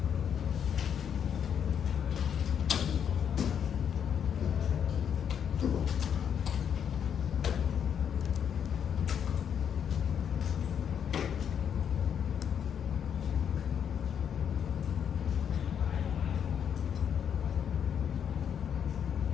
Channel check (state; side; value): quieter; right; 8.2 dB